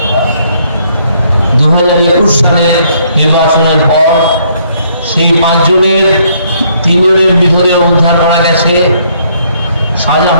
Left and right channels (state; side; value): inverted; both; correlation -0.68